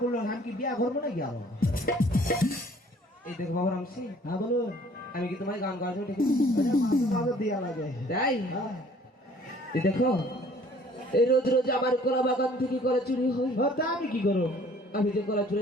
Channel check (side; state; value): both; normal; correlation 0.55